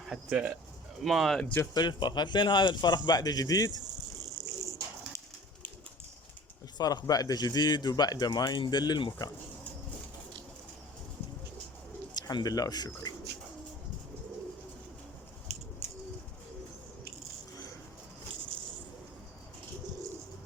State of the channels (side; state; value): both; normal; correlation 0.44